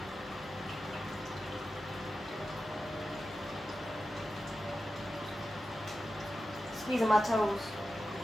Squeezing my toes.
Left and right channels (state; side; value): normal; both; correlation 0.92